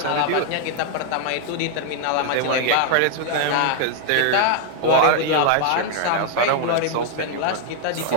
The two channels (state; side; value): different; both; correlation 0.00